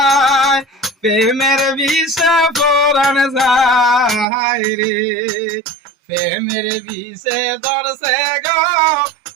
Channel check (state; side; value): drops out; left; at 4.2 s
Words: প্রেমের বিষে পরান যায় রে প্রেমের বিষে ধরছে গো